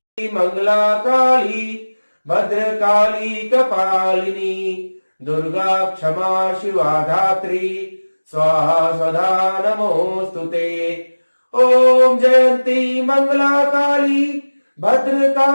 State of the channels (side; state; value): both; inverted; correlation -1.00